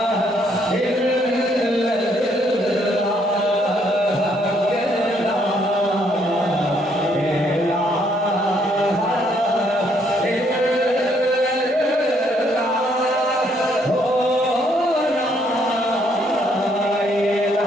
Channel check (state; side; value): normal; both; correlation 0.69